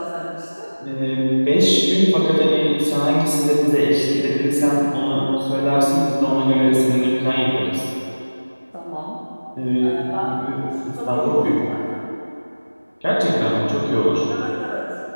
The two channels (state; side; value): inverted; both; correlation -1.00